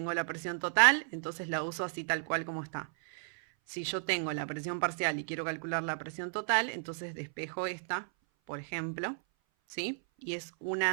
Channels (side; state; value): left; silent; 55 dB below the other